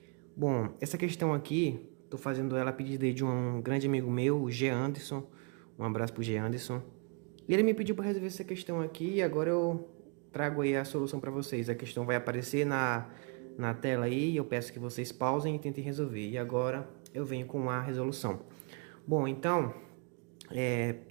Bom, essa questão aqui, tô fazendo ela a pedido de um grande amigo meu, o G. Anderson, um abraço pro G. Anderson. E ele me pediu para resolver essa questão aqui e agora eu trago aí a solução para vocês. A questão vai aparecer na tela aí, eu peço que vocês pausem e tentem resolver. E agora eu venho com a resolução. Bom, então,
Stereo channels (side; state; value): left; quieter; 36.3 dB